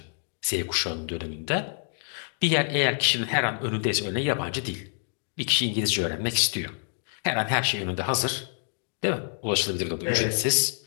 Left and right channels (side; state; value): right; silent; 60 dB below the other